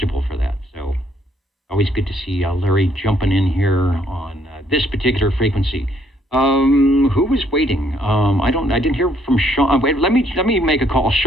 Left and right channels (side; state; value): both; normal; correlation 0.68